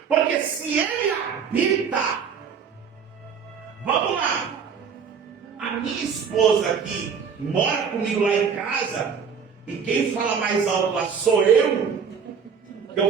Porque se ele habita, vamos lá, a minha esposa aqui mora comigo lá em casa, e quem fala mais alto lá sou eu.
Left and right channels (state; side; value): quieter; left; 6.5 dB